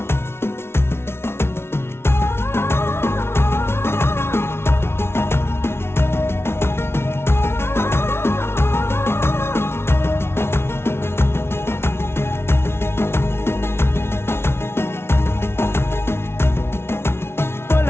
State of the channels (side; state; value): right; late; 0.12 ms